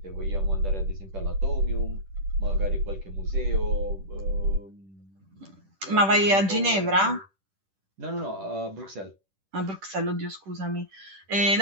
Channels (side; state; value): left; late; 10 ms